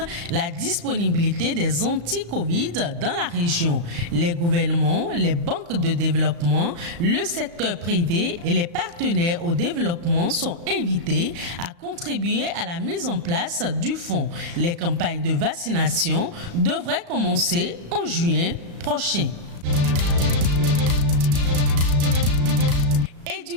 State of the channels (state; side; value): late; left; 35 ms